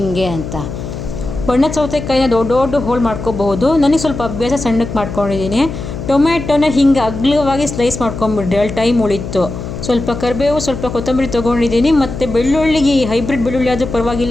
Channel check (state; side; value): noise; left; hum, 8 dB below the sound